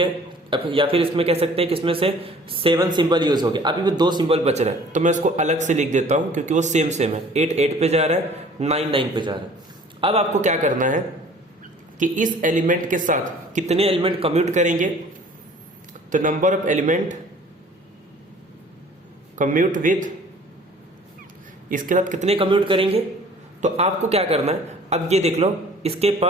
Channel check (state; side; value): normal; both; correlation 0.51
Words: या फिर इसमें कह सकते हैं कि इसमें से 7 सिंबल यूज हो गए। अभी भी 2 सिंबल बच रहे हैं तो मैं इसको अलग से लिख देता हूं क्योंकि वो सेम है। 8 8 पे जा रहा है, 9 9 पे जा रहा है। अब आपको क्या करना है कि इस एलिमेंट के साथ कितने एलिमेंट कम्यूट करेंगे, तो number of element commute with, इसके साथ कितने कम्यूट करेंगे, तो आपको क्या करना है, अब ये देख लो इसके